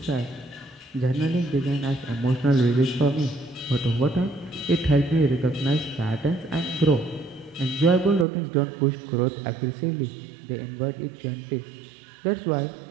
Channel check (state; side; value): drops out; left; at 8.2 s